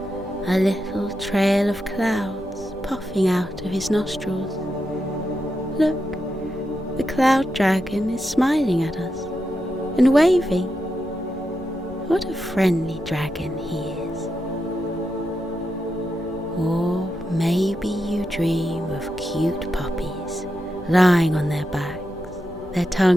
a little trail of clouds puffing out of his nostrils. Look, the cloud dragon is smiling at us and waving. What a friendly dragon he is. Or maybe you dream of cute puppies lying on their backs, their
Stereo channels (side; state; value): left; noise; rumble, 19 dB below the sound